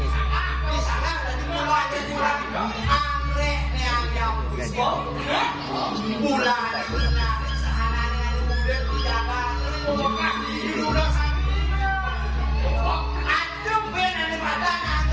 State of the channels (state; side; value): identical; both; correlation 1.00